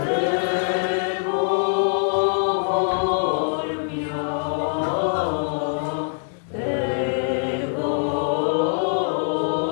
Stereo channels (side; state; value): right; silent; digital silence